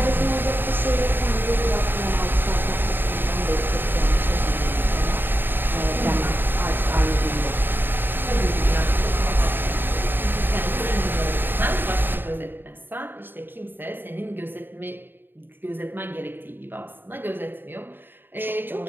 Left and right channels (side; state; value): left; late; 0.095 ms